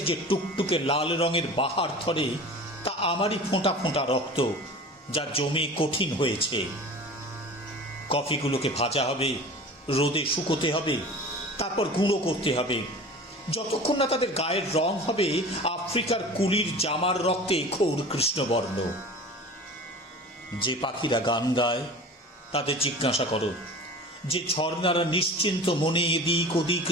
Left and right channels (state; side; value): normal; both; correlation 0.38